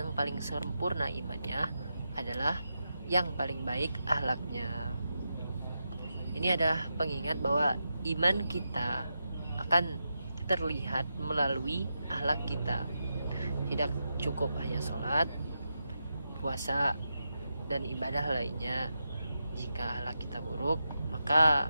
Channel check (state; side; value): inverted; both; correlation -0.87